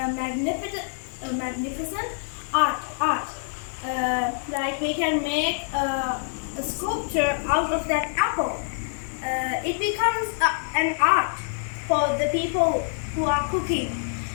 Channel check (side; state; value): right; silent; digital silence